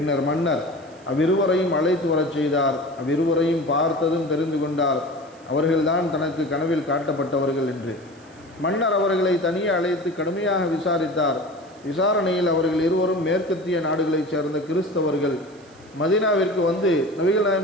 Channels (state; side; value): noise; right; hiss, 29 dB below the sound